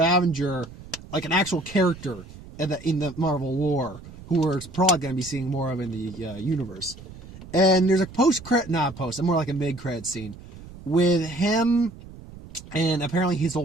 like an actual character in the Marvel lore, who we're probably going to be seeing more of in the universe. And there's a more like a mid-credit scene with him and apparently his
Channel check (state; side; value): noise; right; rumble, 17 dB below the sound